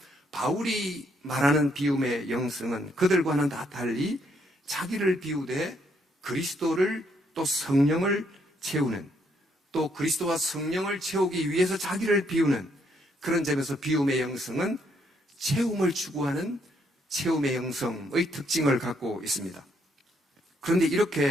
바울이 말하는 비움의 영성은 그들과는 다 달리 자기를 비우되 그리스도를 또 성령을 채우는, 또 그리스도와 성령을 채우기 위해서 자기를 비우는 그런 점에서 비움의 영성은 채움을 추구하는 채움의 영성의 특징을 갖고 있습니다. 그런데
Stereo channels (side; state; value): both; normal; correlation 0.72